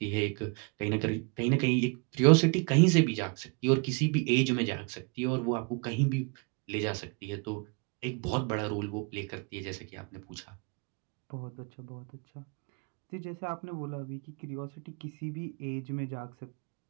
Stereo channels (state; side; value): quieter; left; 31.5 dB